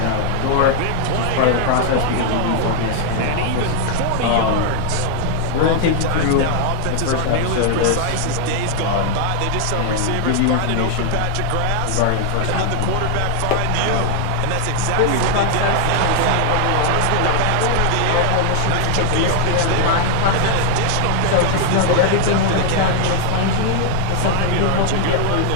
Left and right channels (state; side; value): different; both; correlation 0.00